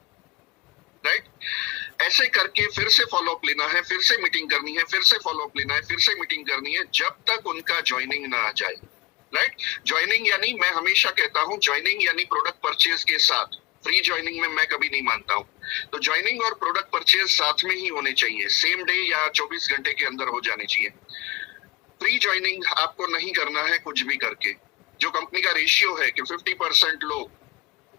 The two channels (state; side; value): quieter; right; 20.2 dB